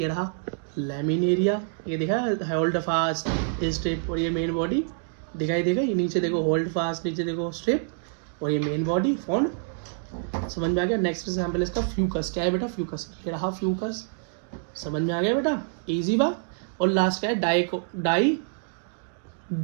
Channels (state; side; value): silent; left; digital silence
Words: रहा लैमिनेरिया, ये देखा होल्ड फास्ट स्ट्रिप, और ये मेन बॉडी दिखाई देगा। ये नीचे देखो होल्ड फास्ट, नीचे देखो स्ट्रिप, और ये मेन बॉडी फॉन्ड। समझ में आ गया। नेक्स्ट एग्जाम्पल इसका फ्यूकस। क्या है बेटा, फ्यूकस, ये रहा फ्यूकस। समझ में आ गया बेटा, इजी बा। और लास्ट क्या है,